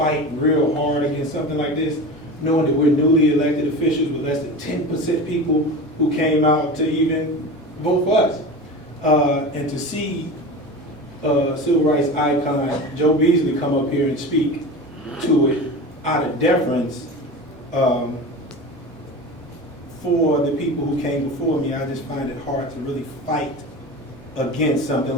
real hard against something like this, knowing that we're newly elected officials with less than 10% people who came out to even vote for us. And to see civil rights icon Joe Beasley come up here and speak to it out of deference for the people who came before me, I just find it hard to really fight against something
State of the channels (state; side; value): normal; both; correlation 0.30